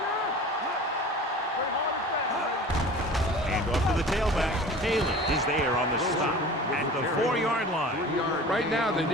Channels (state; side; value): normal; both; correlation 0.40